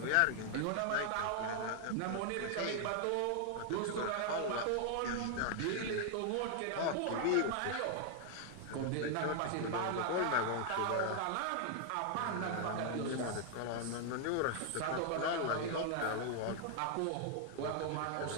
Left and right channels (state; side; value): different; both; correlation 0.00